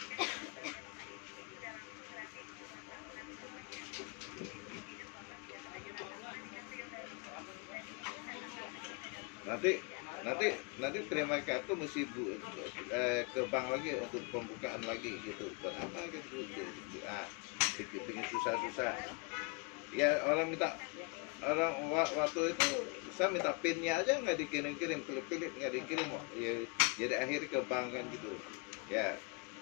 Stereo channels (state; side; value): quieter; right; 29.5 dB